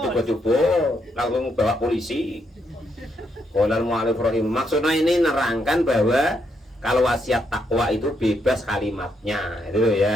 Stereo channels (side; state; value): both; normal; correlation 0.77